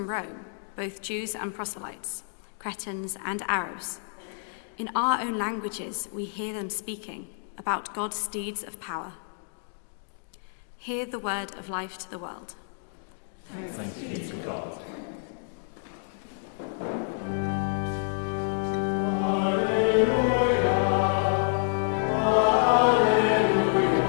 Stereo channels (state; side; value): silent; right; digital silence